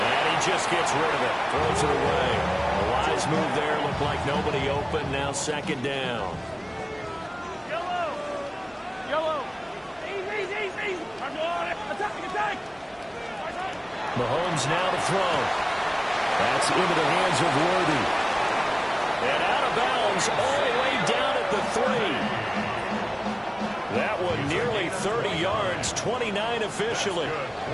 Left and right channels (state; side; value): identical; both; correlation 1.00